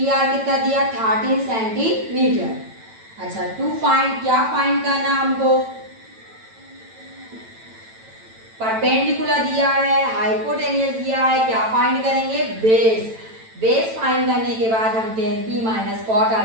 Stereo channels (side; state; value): left; late; 9.0 ms